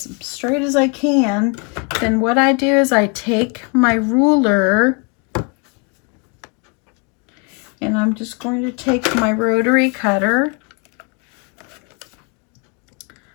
straight as I can, then what I do is I take my ruler and I'm just going to take my rotary cutter,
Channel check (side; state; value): right; quieter; 32.6 dB